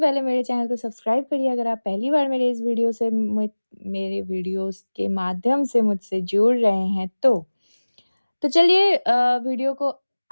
मेरे चैनल को सब्सक्राइब करिए अगर आप पहली बार मेरे इस वीडियो से मेरे वीडियोज़ के माध्यम से मुझसे जुड़ रहे हैं तो। तो चलिए वीडियो को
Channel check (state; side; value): inverted; both; correlation -1.00